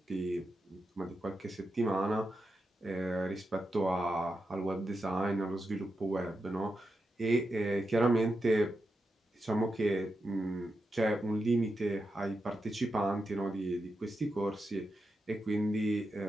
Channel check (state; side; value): normal; both; correlation 0.87